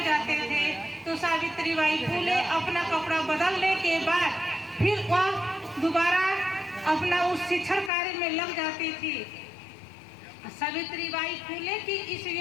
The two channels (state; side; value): drops out; right; at 7.9 s